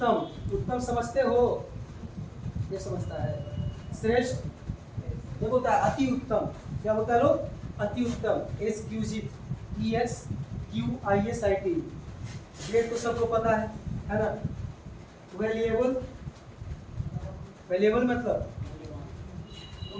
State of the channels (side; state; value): both; identical; correlation 1.00